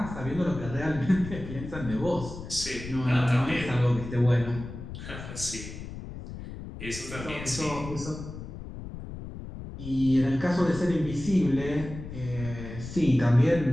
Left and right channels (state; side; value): noise; left; rumble, 10 dB below the sound